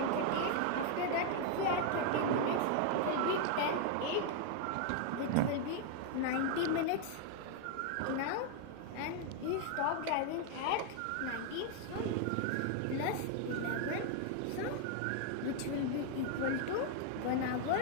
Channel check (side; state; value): both; different; correlation 0.00